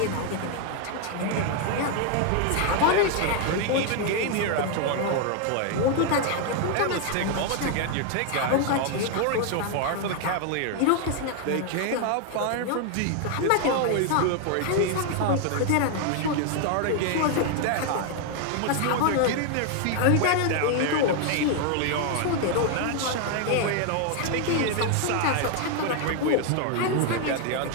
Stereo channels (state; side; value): different; both; correlation 0.00